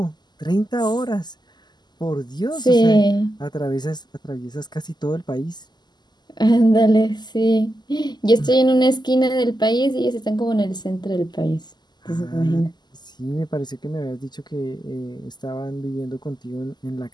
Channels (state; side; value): late; right; 0.21 ms